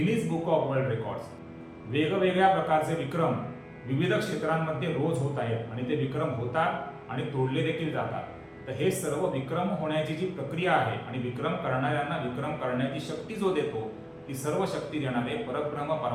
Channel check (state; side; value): identical; both; correlation 1.00